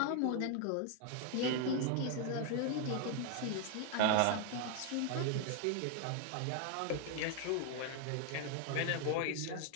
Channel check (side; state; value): both; different; correlation 0.00